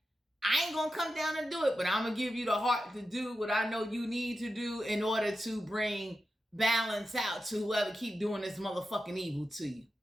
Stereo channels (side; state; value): both; normal; correlation 0.91